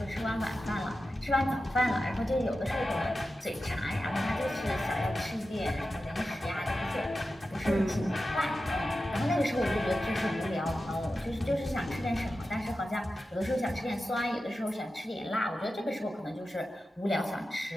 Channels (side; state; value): both; normal; correlation 0.92